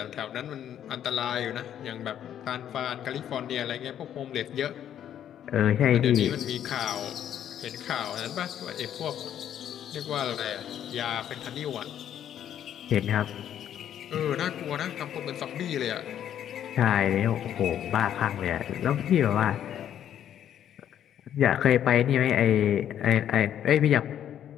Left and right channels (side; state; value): right; quieter; 10.2 dB